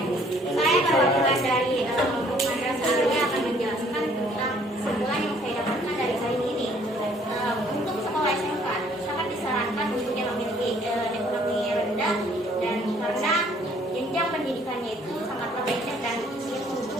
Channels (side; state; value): both; normal; correlation 0.60